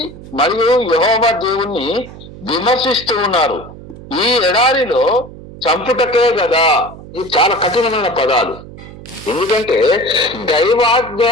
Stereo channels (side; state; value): right; noise; hum, 16 dB below the sound